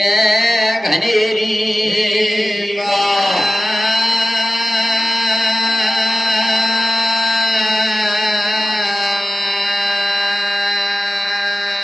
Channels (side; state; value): both; normal; correlation 0.95